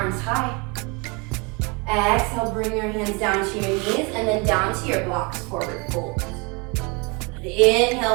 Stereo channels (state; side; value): quieter; left; 29.8 dB